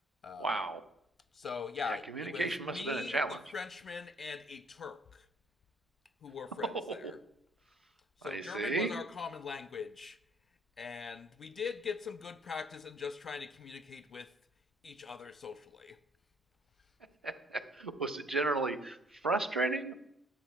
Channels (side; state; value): both; normal; correlation 0.60